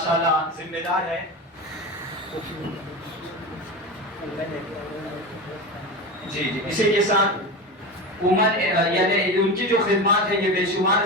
ذمہ دار ہیں. جی اسی کے ساتھ یعنی ان کی جو خدمات ہے یہ بے شمار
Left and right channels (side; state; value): both; normal; correlation 0.24